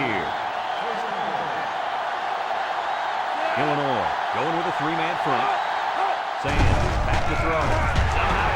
Illinois going with a 3-man front. Sands back to throw. Somehow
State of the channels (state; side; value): identical; both; correlation 1.00